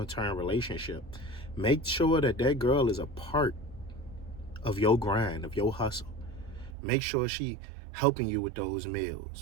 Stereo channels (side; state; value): left; drops out; at 6.8 s